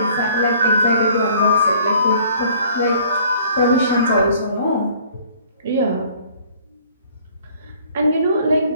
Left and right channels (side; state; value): both; inverted; correlation -0.55